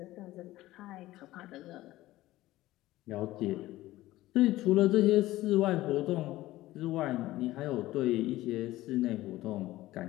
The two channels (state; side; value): quieter; right; 16.6 dB